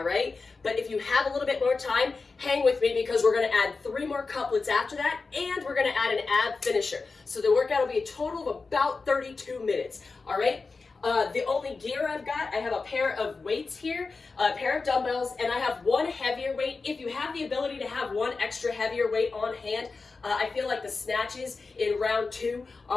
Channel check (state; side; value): quieter; right; 4.2 dB